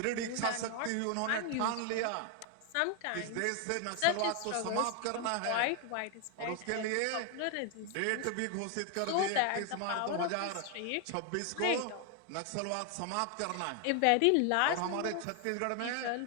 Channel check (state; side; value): different; both; correlation 0.00